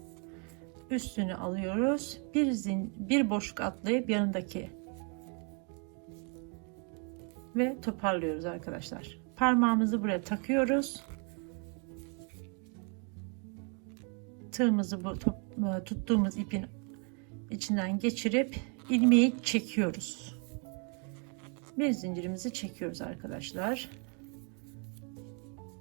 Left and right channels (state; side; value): quieter; left; 37.5 dB